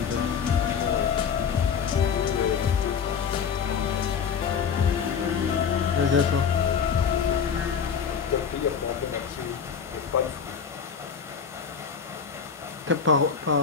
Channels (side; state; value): right; quieter; 6.8 dB